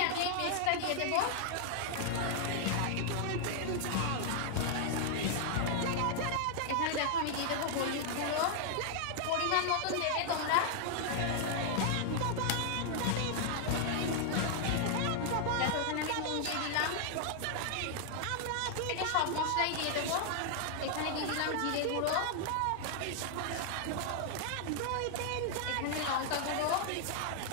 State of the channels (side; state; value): both; different; correlation 0.00